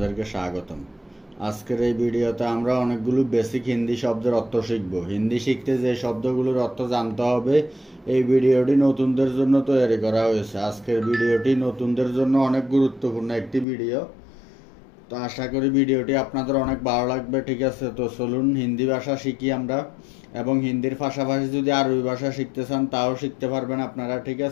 স্বাগতম। আজকের এই ভিডিওতে আমরা অনেকগুলো বেসিক হিন্দি শব্দের অর্থ শিখব। হিন্দি শিখতে যে শব্দগুলোর অর্থ জানতে হবে, এই ভিডিওটি নতুনদের জন্য তৈরি করা হয়েছে। আজকের ভিডিওটি নতুনদের জন্য অনেক গুরুত্বপূর্ণ একটি ভিডিও। তো আশা করি ভিডিওটি আপনাদের অনেক ভালো লাগবে। ঠিক আছে, তো চলুন হিন্দি ভাষা শিখি আমরা। এবং হিন্দির পাশাপাশি যদি আরবি ভাষা শিখতে চান তাও শিখতে পারবেন আপনারা। ঠিক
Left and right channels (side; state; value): right; drops out; at 13.7 s